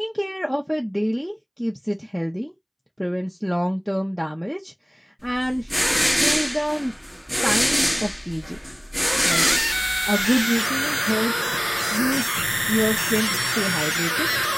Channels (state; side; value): identical; both; correlation 1.00